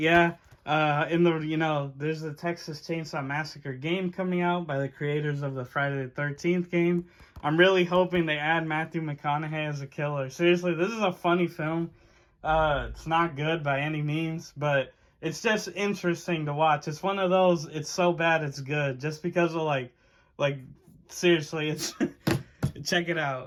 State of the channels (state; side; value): identical; both; correlation 1.00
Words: there's the Texas Chainsaw Massacre game coming out by the creators of the Friday the 13th game. I'm really hoping they add Matthew McConaughey as a killer. Seriously, this is a funny film. It's not good by any means, but it's just interesting to watch. It's one of those, it's so bad it's good, just because of like seriously, it's check it